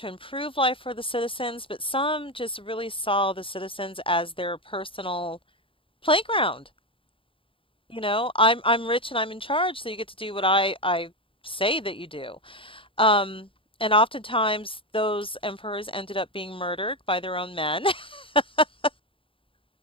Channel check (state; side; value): late; right; 0.26 ms